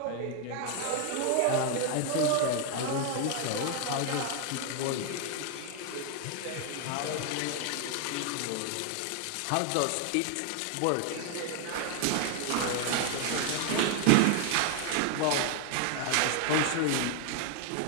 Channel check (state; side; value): different; both; correlation 0.00